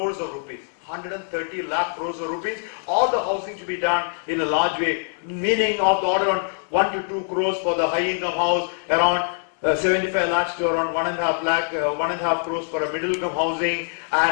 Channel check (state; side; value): silent; right; digital silence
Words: of rupees. 130 lakh crores of rupees. All the housing to be done in a large way, meaning of the order on 1 to 2 crores for the high income house, around 75 lakhs to around 1.5 crores for a middle income housing,